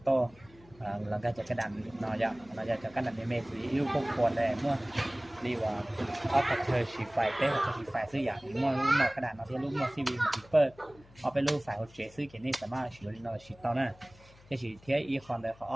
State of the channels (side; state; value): left; noise; hum, 25 dB below the sound